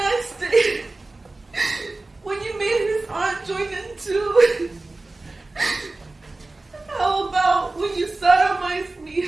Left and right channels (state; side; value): quieter; left; 3.1 dB